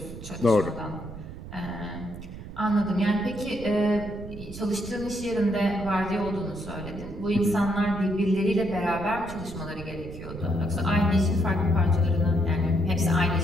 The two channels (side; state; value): right; noise; rumble, 12 dB below the sound